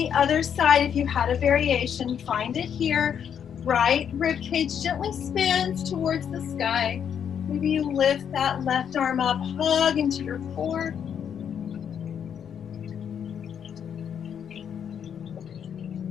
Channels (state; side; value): quieter; right; 8.2 dB